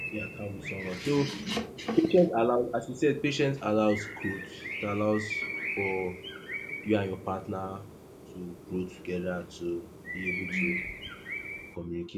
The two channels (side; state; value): both; identical; correlation 1.00